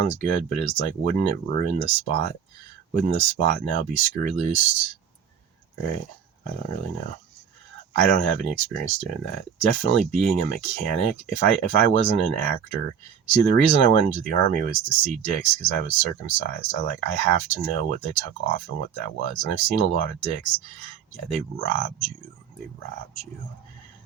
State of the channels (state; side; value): quieter; left; 7.7 dB